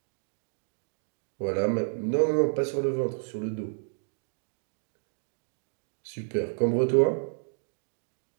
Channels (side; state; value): left; silent; digital silence